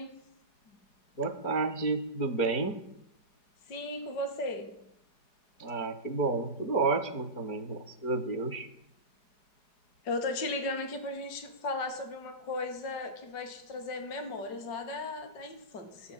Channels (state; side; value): late; right; 4.8 ms